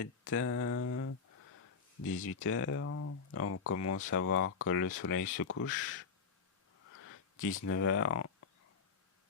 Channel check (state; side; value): quieter; right; 5.6 dB